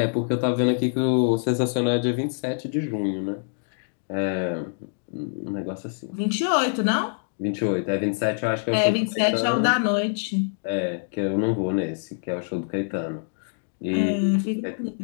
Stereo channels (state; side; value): silent; right; digital silence